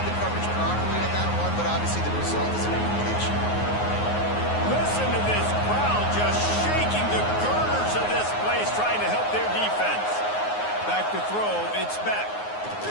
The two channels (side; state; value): right; late; 9.5 ms